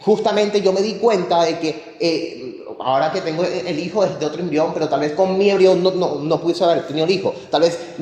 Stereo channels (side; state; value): both; identical; correlation 1.00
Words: yo me di cuenta de que ahora que tengo el hijo es de otro embrión, pero tal vez con mi embrión no pudiese haber tenido el hijo. Tal vez